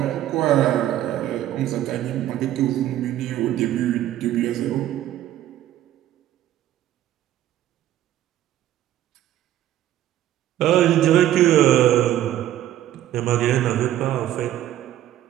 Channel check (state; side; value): quieter; left; 12.7 dB